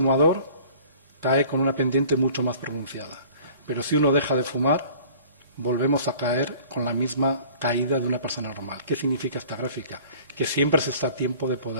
cae con una pendiente mucho más pronunciada. Pero si uno deja de fumar, volvemos a caer con la misma caída de una persona normal. ¿Qué significa esta gráfica? Que siempre se está a tiempo de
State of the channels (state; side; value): inverted; both; correlation -0.50